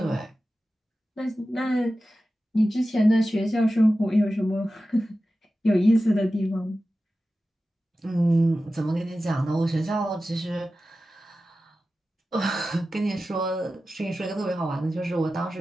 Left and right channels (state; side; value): normal; both; correlation 0.94